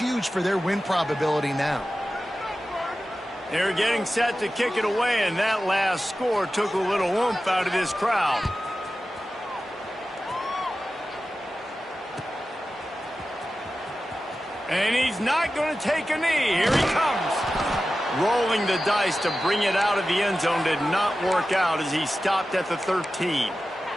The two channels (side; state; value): both; normal; correlation 0.94